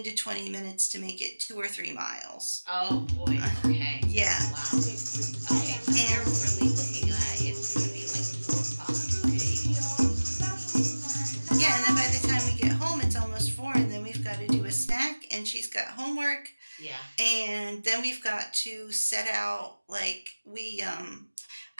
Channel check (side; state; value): both; inverted; correlation -1.00